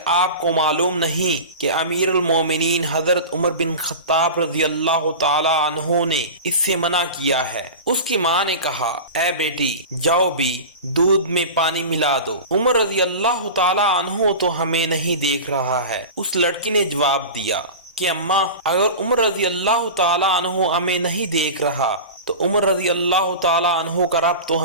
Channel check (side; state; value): both; inverted; correlation -0.30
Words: آپ کو معلوم نہیں کہ امیر المومنین حضرت عمر بن خطاب رضی اللہ تعالی عنہ نے اس سے منع کیا ہے؟ اس کی ماں نے کہا، اے بیٹی جاؤ بھی دودھ میں پانی ملا دو۔ عمر رضی اللہ تعالی عنہ تو ہمیں نہیں دیکھ رہا ہے۔ اس لڑکی نے جواب دیا کہ اماں اگر عمر رضی اللہ تعالی عنہ ہمیں نہیں دیکھ رہا تو عمر رضی اللہ تعالی عنہ کا رب تو